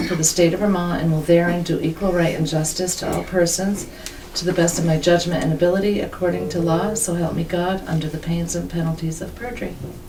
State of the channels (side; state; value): both; identical; correlation 1.00